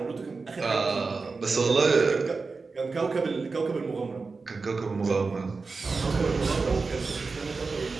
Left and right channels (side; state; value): left; quieter; 4.2 dB